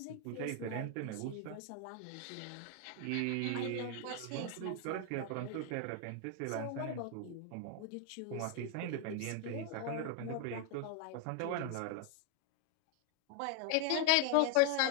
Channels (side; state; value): both; different; correlation 0.00